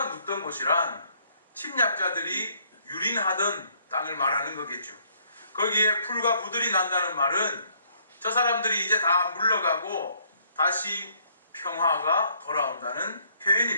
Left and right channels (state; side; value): inverted; both; correlation -0.66